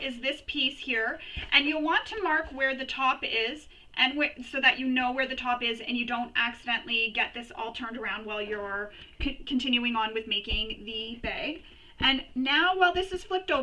this piece here, and you'll want to mark where the top is, and so that you know where the top is and you don't accidentally get this all turned around while you're continuing on with making the bag. And now while this is flipped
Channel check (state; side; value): identical; both; correlation 1.00